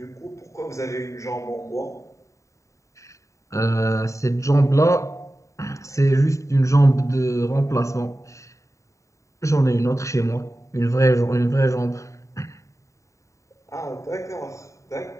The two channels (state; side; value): late; right; 0.15 ms